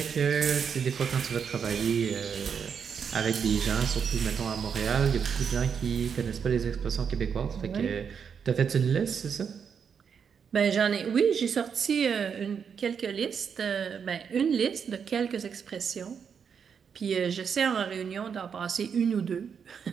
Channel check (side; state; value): left; quieter; 6.9 dB